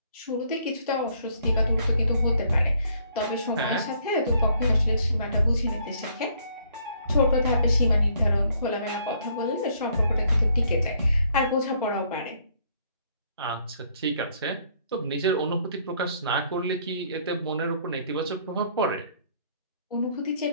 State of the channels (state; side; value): inverted; both; correlation -0.64